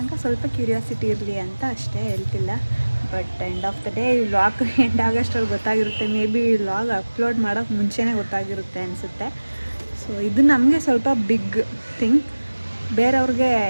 ತನಕ ಸ್ವಲ್ಪ ಕ್ಯೂರಿಯಾಸಿಟಿ ಇರಲಿ ಅಂತ ಅಷ್ಟೇ, ಹೇಳ್ತಿಲ್ಲ. But end of the day ಈ ವ್ಲಾಗ್ ಎಂಡ್ ಆಗೋಷ್ಟರಲ್ಲಿ ಗೊತ್ತಾಗಿರುತ್ತೆ. ಮೇ ಬಿ ಈ ವ್ಲಾಗ್ ಅಪ್ಲೋಡ್ ಮಾಡೋಕ್ಕೆ ಮುಂಚೆನೇ ಗೊತ್ತಾಗಿರುತ್ತೆ ಅನಿಸುತ್ತೆ. ಸೊ ಇದು ನಮಗೆ ಸ್ವಲ್ಪ ಬಿಗ್ ಥಿಂಗ್. ಬೇರೆಯವ್ರಿಗೆ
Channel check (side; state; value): both; inverted; correlation -1.00